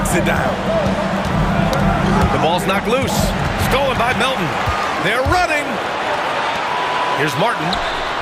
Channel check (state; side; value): identical; both; correlation 1.00